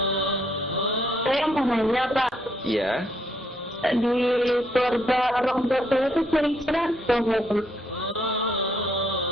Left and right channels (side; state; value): both; normal; correlation 0.72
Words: Saya mau nanya Pak, Iya. di keluarga orang tua saya itu kira-kira berapa?